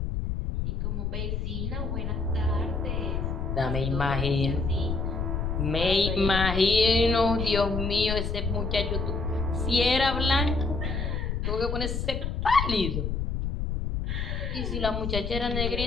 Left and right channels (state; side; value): noise; left; rumble, 2 dB below the sound